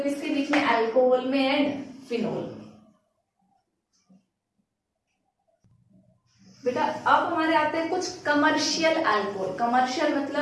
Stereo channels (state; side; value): identical; both; correlation 1.00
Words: किसके बीच में, अल्कोहल में एंड फिनोल। बेटा अब हमारे आते हैं कुछ कमर्शियल अल्कोहल, कमर्शियल